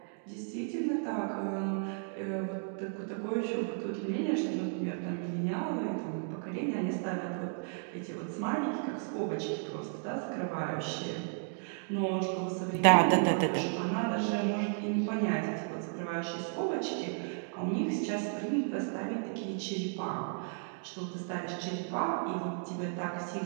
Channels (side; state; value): left; silent; 55 dB below the other